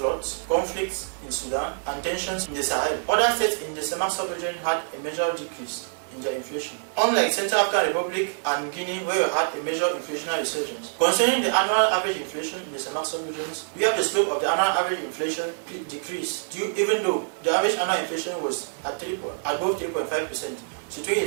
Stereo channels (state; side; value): silent; left; digital silence